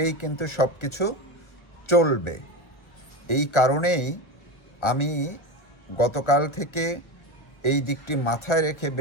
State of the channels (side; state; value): right; late; 1.2 ms